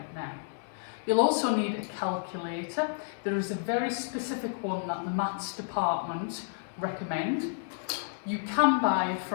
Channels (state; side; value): silent; right; 55 dB below the other